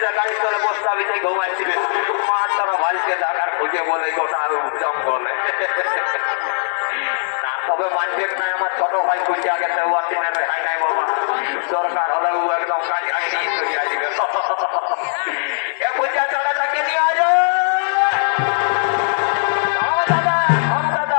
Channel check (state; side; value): silent; right; 66 dB below the other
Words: গাড়ির তলে বসতে আমি তাই ঘুমাইছিলেন মার তারা ভাইকে দেখার খুঁজে বলে গোটা আমি উদ্যম বলে। তবে মানবেন না আমার ছোট ভাই খুঁজে আগে হয় নাই বাবা, দরকার হলে ও একদম কাজে আগে নিয়ে চলে আসবে। এ পূজা চলে তাকে নিয়ে আজ